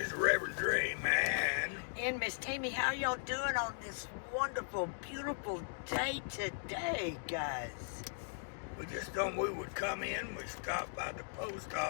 is Reverend Dre, man. And Miss Tammy, how y'all doing on this wonderful, beautiful day today, guys? We just thought we would come in. We stopped by the post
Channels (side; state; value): right; silent; digital silence